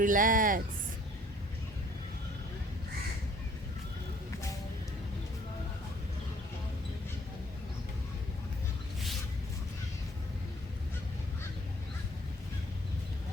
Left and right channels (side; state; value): both; normal; correlation 0.58